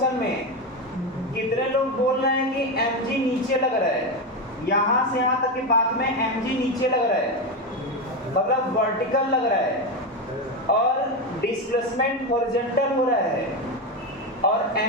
में कितने लोग बोल रहे हैं कि mg नीचे लग रहा है? यहां से यहां तक के पाथ में mg नीचे लग रहा है, मतलब वर्टिकल लग रहा है, और डिस्प्लेसमेंट हॉरिजॉन्टल हो रहा है, और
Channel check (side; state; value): both; normal; correlation 0.13